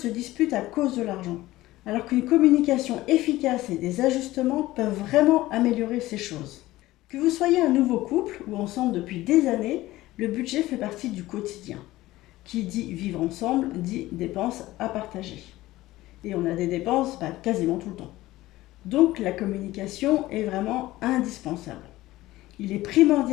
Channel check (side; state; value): right; quieter; 17.1 dB